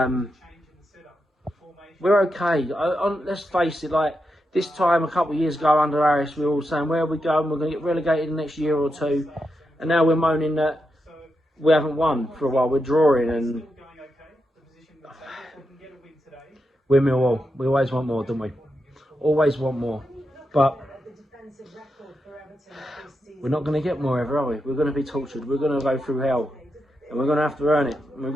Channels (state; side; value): normal; both; correlation 0.86